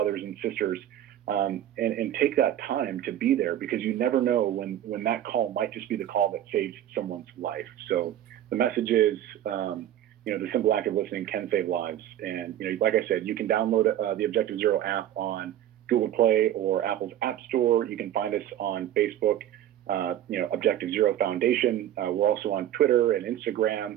and sisters. And take that time to be there, because you never know when that call might just be the call that saves someone's life. So the message is, the simple act of listening can save lives. And, like I said, you can download the Objective Zero app on Google Play or Apple's App Store. You can find us on Facebook, Objective Zero Foundation. We're also on Twitter and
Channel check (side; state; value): left; quieter; 11.6 dB